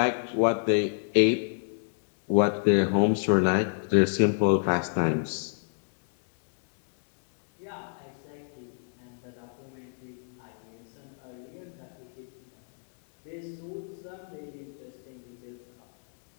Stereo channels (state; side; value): silent; right; digital silence